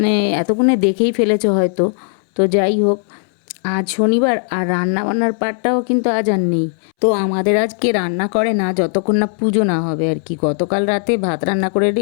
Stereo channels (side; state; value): right; silent; 68 dB below the other